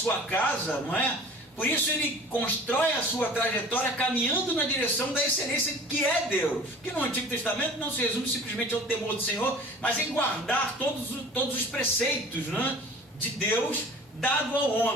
casa, não é? Por isso ele constrói a sua trajetória caminhando na direção da excelência que é Deus, que no Antigo Testamento não se resume simplesmente ao temor do Senhor, mas em guardar todos os preceitos, né, de Deus dado ao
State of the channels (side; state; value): both; normal; correlation 0.43